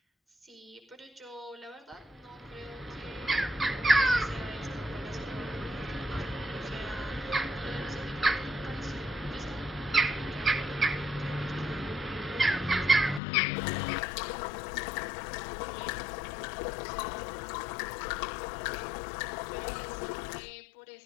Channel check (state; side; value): drops out; right; at 13.2 s